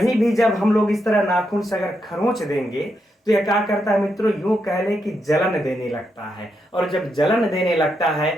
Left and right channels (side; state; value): both; normal; correlation 0.82